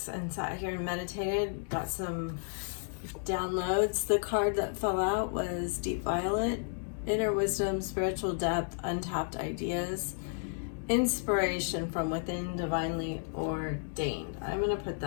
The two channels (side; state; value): right; silent; digital silence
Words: and sat here and meditated, got some downloads. The card that fell out was Deep Violet, Inner Wisdom, Spiritual Depth, Untapped Ideas, Inspiration from Within, Divinely Ordained. I'm going to put